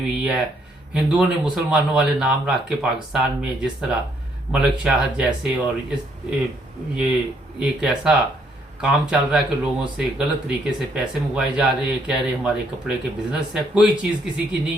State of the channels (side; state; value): both; normal; correlation 0.70